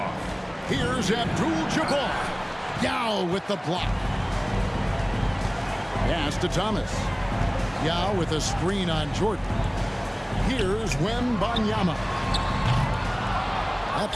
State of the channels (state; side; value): identical; both; correlation 1.00